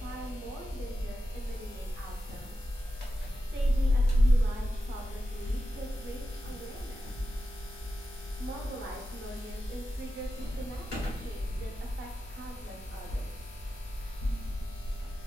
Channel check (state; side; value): normal; both; correlation 0.91